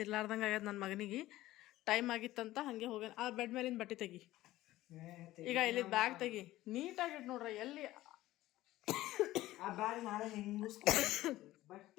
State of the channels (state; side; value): quieter; right; 16.1 dB